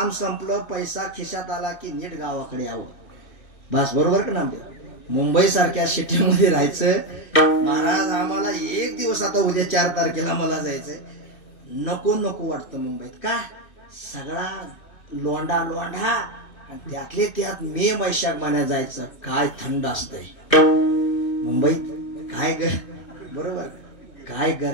संपलं, पैसा खिशात आला की नीट गावाकडे यावं. बस. बरोबर का नामदेव? मुंबई सारख्या सिटीमध्ये राहायचं. महाराज आम्हाला एक दिवस, आता उद्या 4 तारखेला मला जायचंय, नको वाटतं मुंबईत. का? सगळा लोंढा आणि त्यातले त्यात मे वैशाख महिन्यात जायचं. काय थंड असतंय मुंबईत. काय बरोबर, काय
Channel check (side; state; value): right; late; 2.6 ms